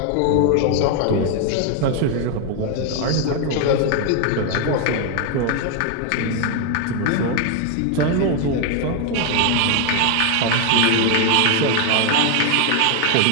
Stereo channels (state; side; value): different; both; correlation 0.01